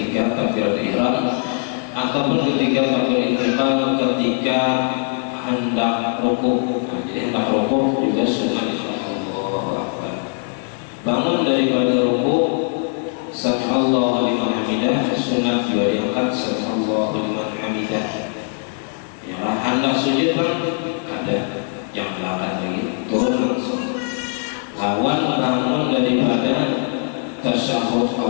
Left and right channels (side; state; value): right; silent; 56 dB below the other